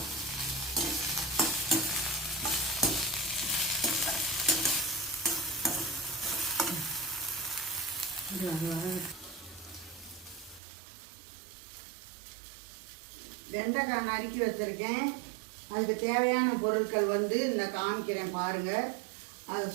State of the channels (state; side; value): drops out; left; at 10.6 s